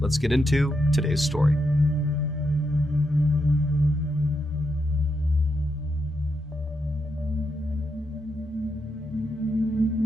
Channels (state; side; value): normal; both; correlation 0.83